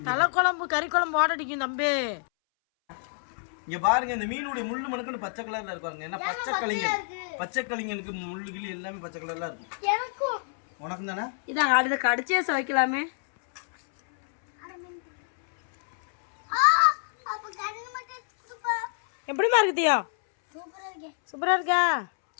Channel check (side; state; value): right; silent; 60 dB below the other